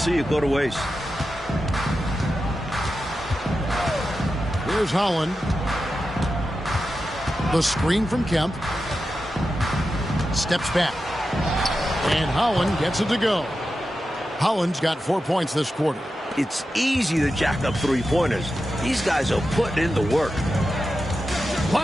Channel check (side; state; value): both; normal; correlation 0.91